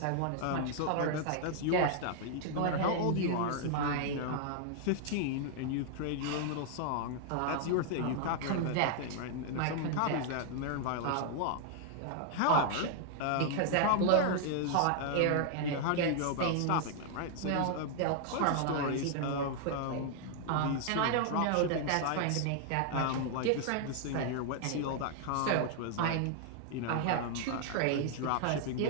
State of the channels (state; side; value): different; both; correlation 0.00